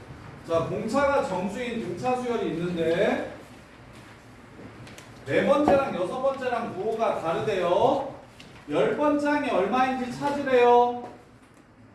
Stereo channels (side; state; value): both; identical; correlation 1.00